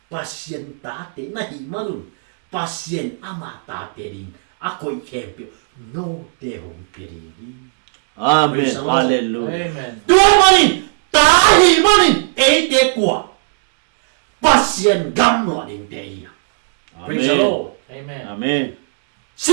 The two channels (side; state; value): left; silent; digital silence